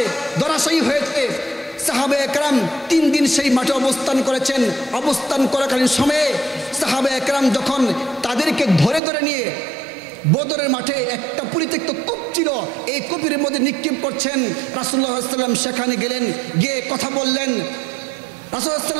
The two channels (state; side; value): drops out; left; at 9.0 s